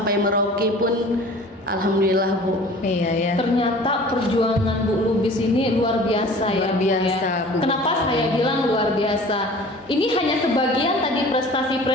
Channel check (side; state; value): both; normal; correlation 0.45